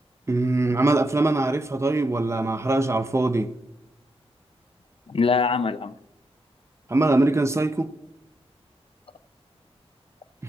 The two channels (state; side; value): normal; both; correlation 0.81